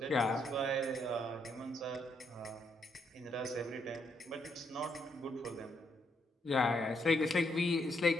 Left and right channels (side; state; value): both; normal; correlation 0.75